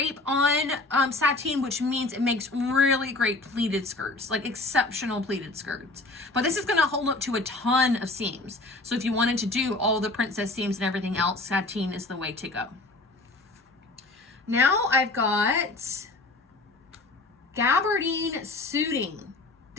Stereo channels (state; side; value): quieter; right; 3.1 dB